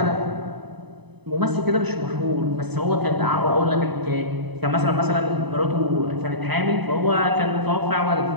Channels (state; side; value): late; left; 0.99 ms